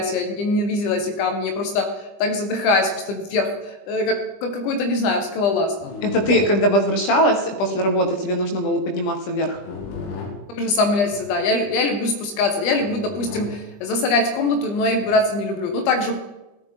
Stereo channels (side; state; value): right; late; 20 ms